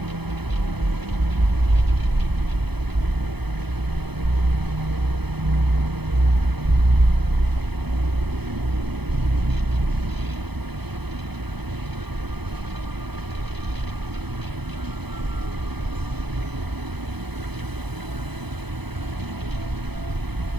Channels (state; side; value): late; left; 0.98 ms